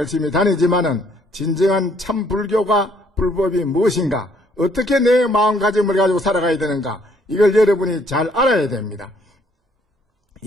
다니지만은 진정한 참 불법이 무엇인가, 어떻게 내 마음가짐을 가지고 살아가야 되는가, 이걸 여러분이 잘 알아야 됩니다.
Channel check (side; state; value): both; normal; correlation 0.65